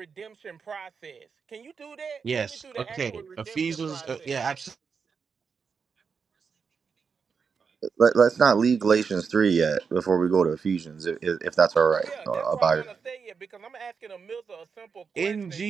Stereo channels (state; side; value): quieter; left; 5.8 dB